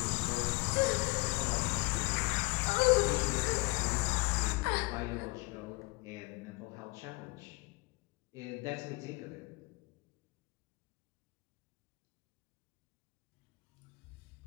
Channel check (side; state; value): right; quieter; 25.6 dB